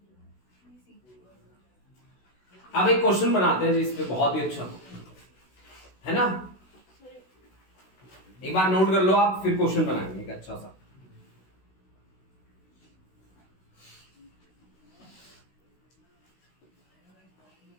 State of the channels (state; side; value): late; right; 16 ms